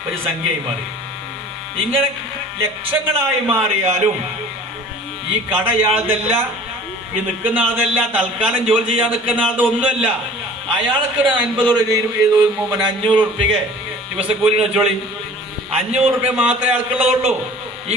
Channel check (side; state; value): both; normal; correlation 0.46